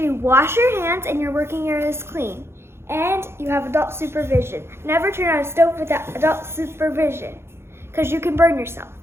you wash your hands and your working area is clean. And you have adult supervision. Never turn on a stove without adult supervision, because you can burn yourself.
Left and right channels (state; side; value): late; left; 0.12 ms